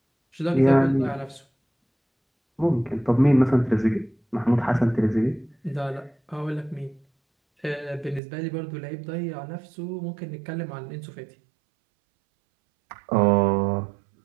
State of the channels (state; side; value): drops out; left; at 8.2 s